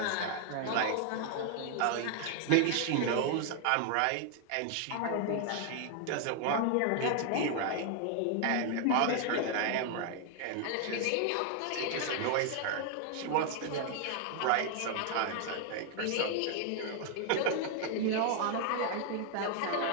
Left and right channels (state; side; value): different; both; correlation 0.00